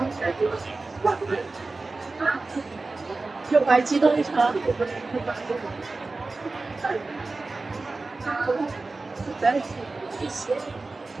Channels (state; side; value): quieter; left; 3.5 dB